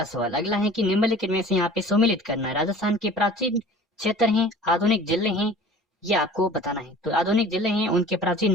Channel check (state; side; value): normal; both; correlation 0.45